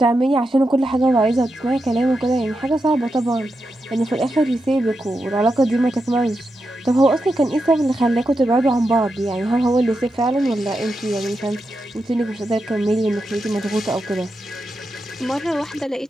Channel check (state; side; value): normal; both; correlation 0.87